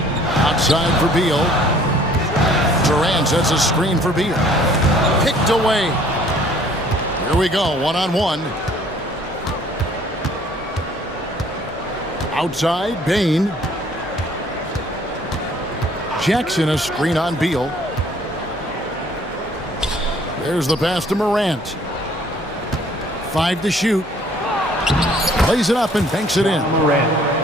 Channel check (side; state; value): both; normal; correlation 0.57